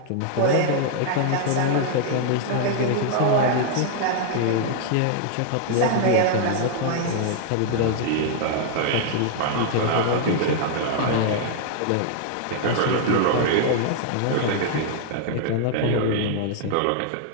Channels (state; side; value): different; both; correlation -0.01